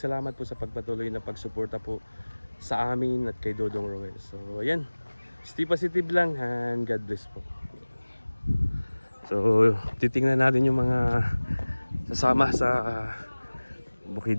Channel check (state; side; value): inverted; both; correlation -1.00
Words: po sa pagpatuloy na pagsuporta po sa amin at kay Dodong Roel. So ayan, stay positive lang and God bless po. So titingnan natin yung mga sasama sa